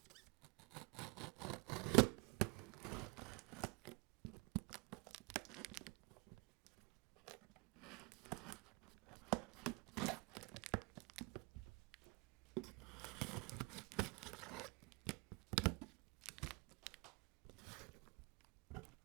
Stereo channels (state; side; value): quieter; left; 25.5 dB